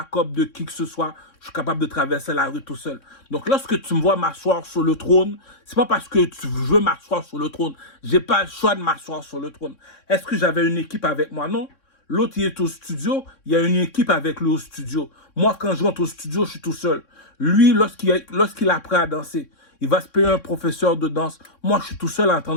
de qui que ce soit. Je suis capable de traverser la rue tout seul. Donc, lorsque tu me vois m'asseoir sur le trône, c'est pas parce que tu veux m'asseoir sur le trône. J'ai pas le choix de m'asseoir sur le trône. Est-ce que j'avais une équipe avec moi? Non. L'autre, il est au studio. Il y a une équipe avec lui au studio. Moi, quand je rentre au studio, je suis tout seul. Lui, lorsqu'il apprend à danser, il va se payer un professeur de danse. Moi, je suis tout seul en train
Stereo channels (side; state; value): right; late; 3.6 ms